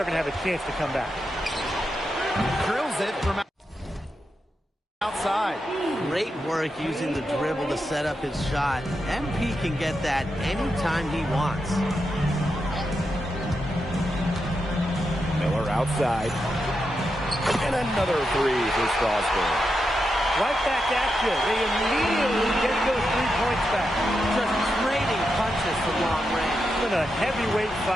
going to have a chance to come back. Drills it from outside. Great work using the dribble to set up his shot. MP can get that anytime he wants. Miller outside. And another three for Strasburg. Right back at you. They immediately get those 3 points back. Just trading punches from long range. It's been a heavyweight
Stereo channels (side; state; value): both; normal; correlation 0.86